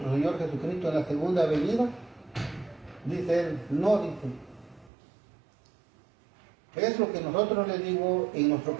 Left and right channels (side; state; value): left; drops out; at 4.9 s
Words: Señor Jesucristo en la segunda venida. Dice él, no, dice. Es lo que nosotros le digo, en nuestro